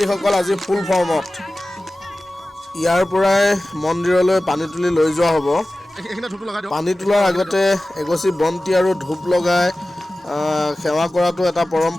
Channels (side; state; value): both; normal; correlation 0.96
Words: আজি ফুল ফৰ্মত। ইয়াৰ পৰাই মন্দিৰলৈ পানী তুলি লৈ যোৱা হ'ব। পানী তোলাৰ আগতে এগছি বন্তি আৰু ধূপ লগাই সেৱা কৰাটো এটা